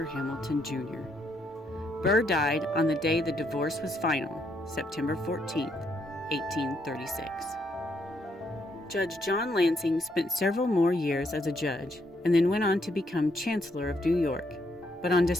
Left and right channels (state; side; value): normal; both; correlation 0.74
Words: Hamilton, Jr. Burr died on the day the divorce was final, September 14, 1836. Judge John Lansing spent several more years as a judge, and then went on to become Chancellor of New York. But on